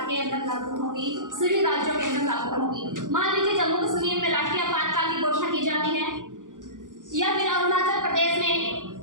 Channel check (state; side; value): late; left; 0.88 ms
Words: के अंदर लागू होंगी, सभी राज्यों के अंदर लागू होंगी। मान लीजिए जम्मू कश्मीर में राष्ट्रीय आपातकाल की घोषणा की जाती है या फिर अरुणाचल प्रदेश में